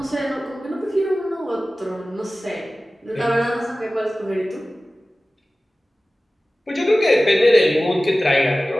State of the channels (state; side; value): normal; both; correlation 0.96